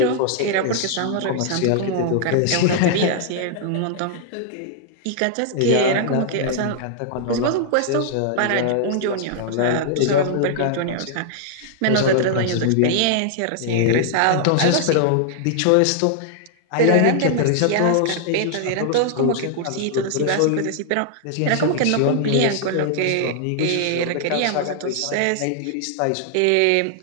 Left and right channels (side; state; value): both; different; correlation -0.01